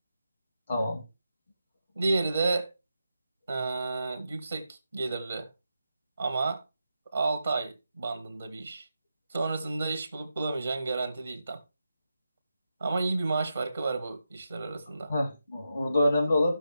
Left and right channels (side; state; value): both; inverted; correlation -0.87